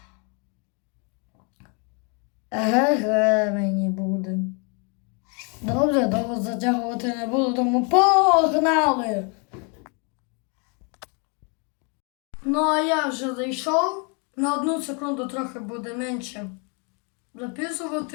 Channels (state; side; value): quieter; right; 35.3 dB